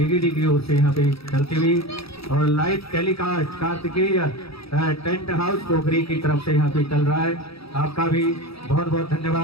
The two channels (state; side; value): late; right; 0.77 ms